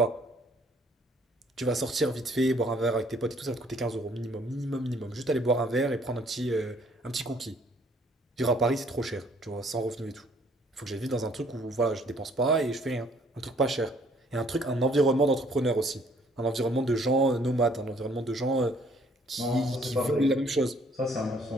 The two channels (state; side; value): normal; both; correlation 0.62